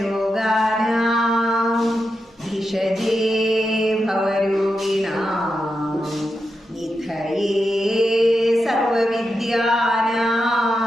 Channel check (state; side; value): normal; both; correlation 0.87